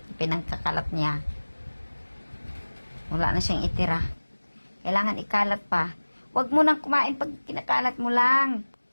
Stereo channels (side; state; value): both; inverted; correlation -1.00